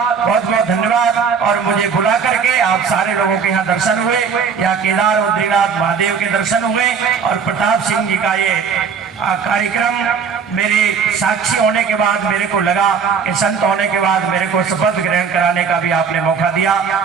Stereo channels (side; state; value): left; quieter; 6.2 dB